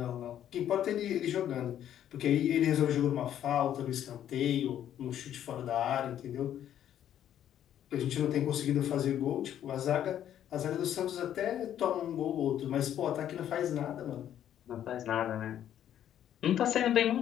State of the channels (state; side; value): quieter; right; 10.7 dB